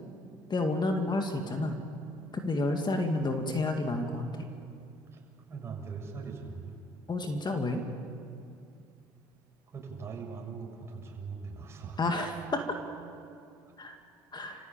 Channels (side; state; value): both; normal; correlation 0.64